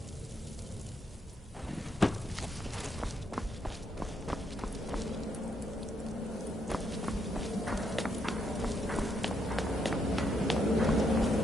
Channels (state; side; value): normal; both; correlation 0.76